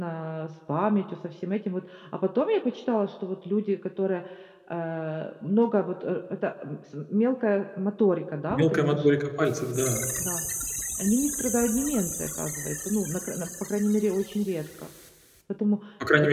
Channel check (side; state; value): both; identical; correlation 1.00